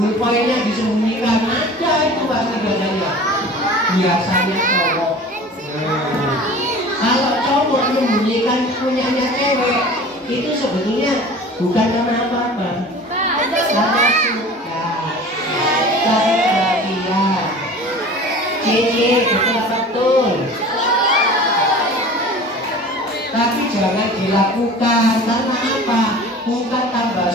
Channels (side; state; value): both; normal; correlation 0.41